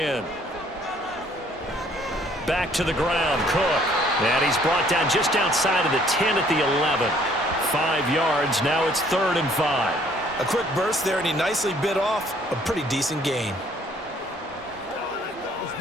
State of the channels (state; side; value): normal; both; correlation 0.61